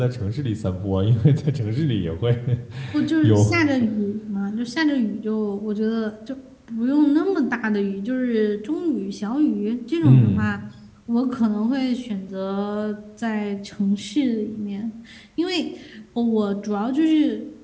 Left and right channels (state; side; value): identical; both; correlation 1.00